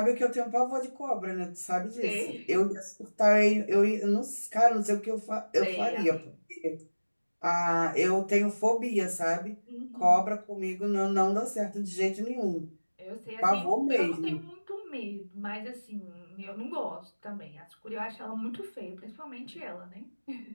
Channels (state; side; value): inverted; both; correlation -1.00